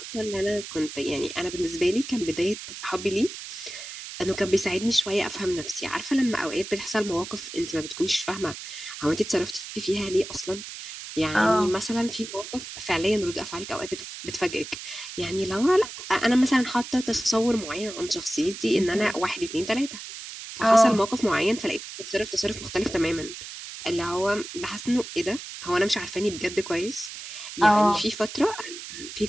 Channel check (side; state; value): right; noise; hiss, 11 dB below the sound